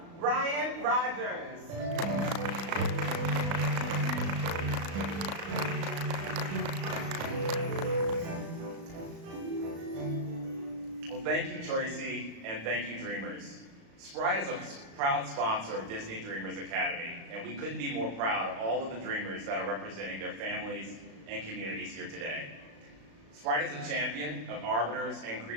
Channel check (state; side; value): late; left; 36 ms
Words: Brian Rogers. Well, thank you, Tracy, and thank you, Dreamers. Sprite is a proud sponsor of Disney Dreamers Academy, and we couldn't be more proud of all of the Dreamers that are representing their families and communities here today. Sprite is a champion of arbiters and